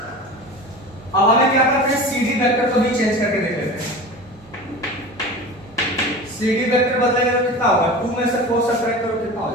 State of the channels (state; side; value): normal; both; correlation 0.33